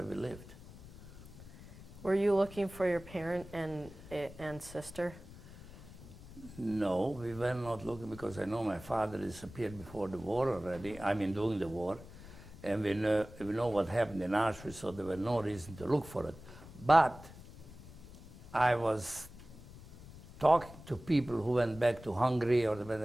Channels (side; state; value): left; noise; rumble, 17 dB below the sound